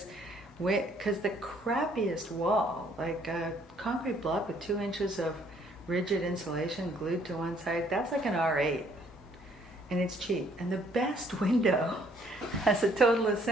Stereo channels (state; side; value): normal; both; correlation 0.64